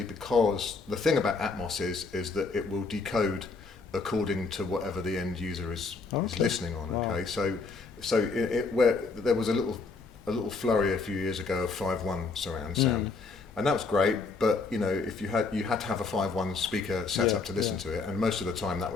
because the thing about Atmos is that it will decode according to whatever the end user is listening on. Okay, so where there was a little flurry a few years ago of 5.1 surround sound, and that was great. But if you had to have a 5.1 speaker set up to listen to it, and most of the time that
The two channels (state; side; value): quieter; right; 4.2 dB